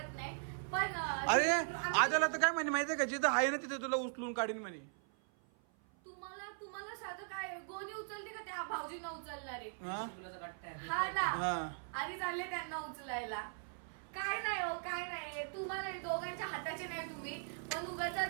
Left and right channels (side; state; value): left; silent; 52 dB below the other